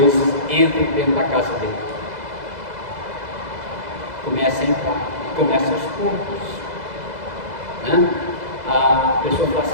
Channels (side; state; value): left; late; 2.0 ms